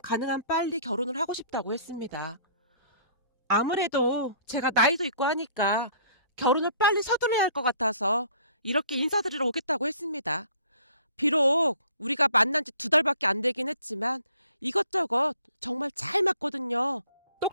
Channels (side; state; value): both; inverted; correlation -0.55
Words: 가능한 빨리 결혼을 하고 싶다고 했습니다. 아무래도 제가 나이도 있고 하니까 결혼을 빨리 서둘러야 할 것 같아서 이렇게 인사드리러 오겠다고 했습니다. 비록 우리가 만난 지 2달밖에 안 되긴 했지만 이것저것 정말 잘 맞거든요.